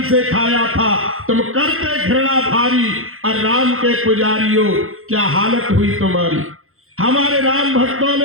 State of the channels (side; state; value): left; late; 0.61 ms